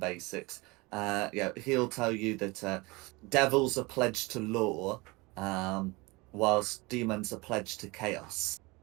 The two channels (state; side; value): quieter; left; 24.7 dB